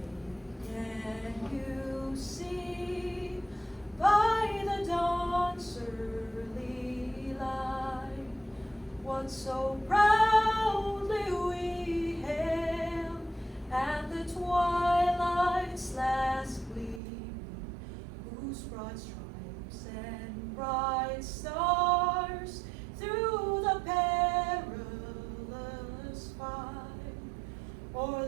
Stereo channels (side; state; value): left; drops out; at 17.0 s